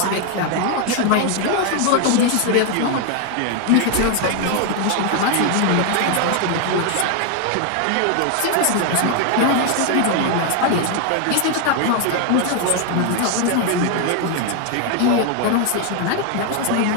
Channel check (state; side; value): different; both; correlation 0.01